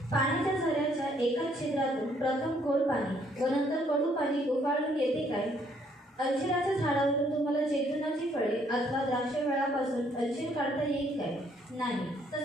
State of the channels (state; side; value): normal; both; correlation 0.67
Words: पाण्याच्या झऱ्याच्या एकाच छिद्रातून प्रथम गोड पाणी व नंतर कडू पाणी उफाळून येते काय? अंजिराच्या झाडावरून तुम्हाला जैतुनाची फळे अथवा द्राक्षवेळापासून अंजीर काढता येईल काय? नाही.